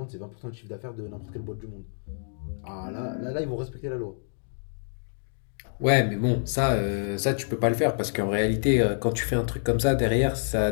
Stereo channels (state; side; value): silent; right; digital silence